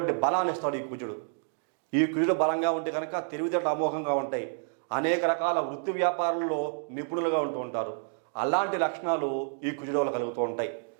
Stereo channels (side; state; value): left; silent; 58 dB below the other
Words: బలాన్ని ఇస్తాడు ఈ కుజుడు. ఈ కుజుడు బలంగా ఉంటే కనుక తెలివితేటలు అమోఘంగా ఉంటాయి. అనేక రకాల వృత్తి వ్యాపారాల్లో నిపుణులుగా ఉంటూ ఉంటారు. అలాంటి లక్షణాలు ఈ కుజుడు వల్ల కలుగుతూ ఉంటాయి.